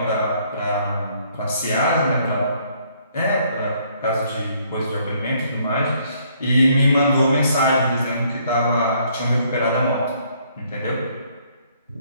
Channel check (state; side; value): inverted; both; correlation -0.66